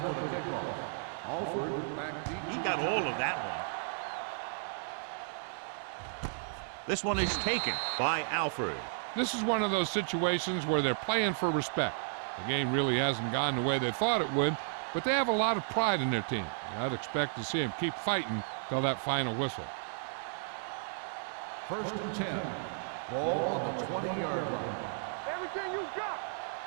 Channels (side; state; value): left; silent; digital silence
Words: He got all of that one. This one is taken by Alford. This is one of those situations where they're playing for respect. The game really hasn't gone the way they thought it would, but they have a lot of pride in their team. I'd expect to see them keep fighting till that final whistle. First and 10. Ball on the 20-yard line. Everything you got.